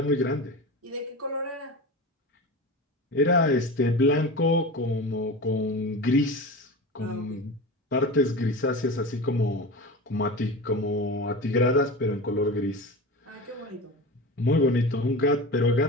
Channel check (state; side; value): normal; both; correlation 0.29